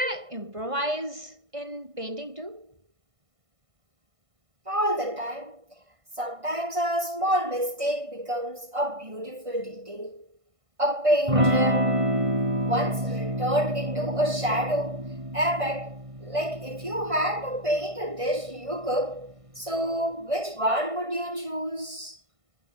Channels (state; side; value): late; left; 1.5 ms